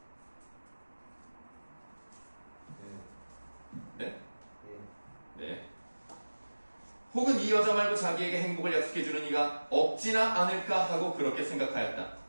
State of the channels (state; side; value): inverted; both; correlation -1.00